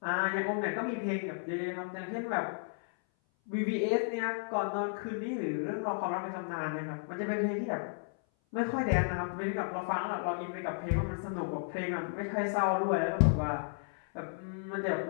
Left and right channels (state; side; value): silent; right; 56 dB below the other